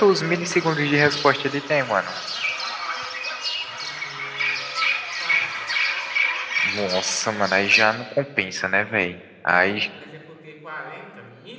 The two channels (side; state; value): both; identical; correlation 1.00